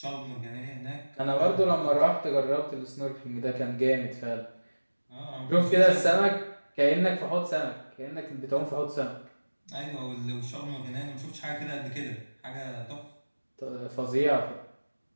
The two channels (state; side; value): inverted; both; correlation -1.00